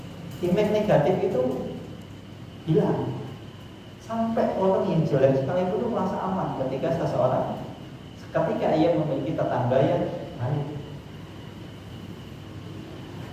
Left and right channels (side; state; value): both; identical; correlation 1.00